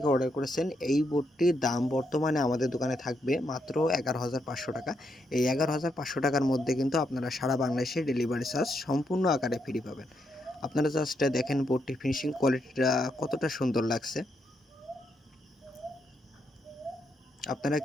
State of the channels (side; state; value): both; normal; correlation 0.79